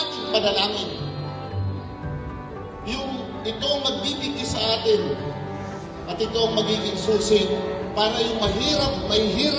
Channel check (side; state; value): both; identical; correlation 1.00